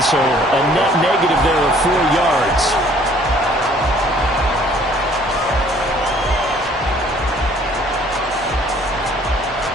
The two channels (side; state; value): both; normal; correlation 0.58